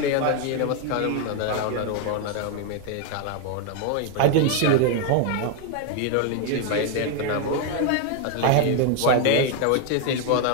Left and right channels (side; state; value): both; different; correlation 0.01